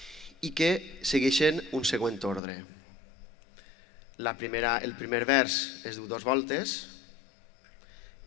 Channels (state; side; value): drops out; right; at 2.4 s